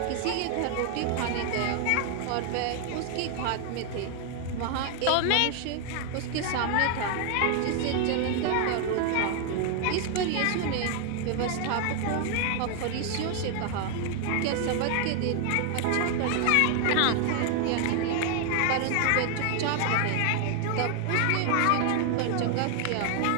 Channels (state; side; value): different; both; correlation 0.00